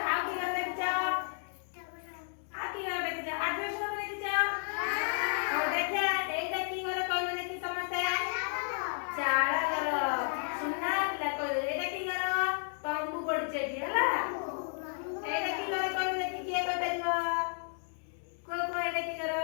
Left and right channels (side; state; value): right; silent; 56 dB below the other